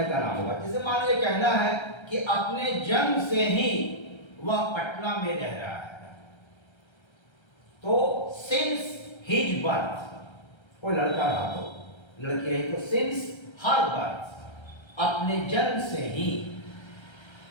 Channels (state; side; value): late; right; 1.3 ms